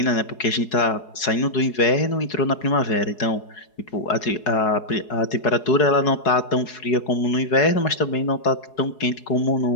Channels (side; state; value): right; late; 4.8 ms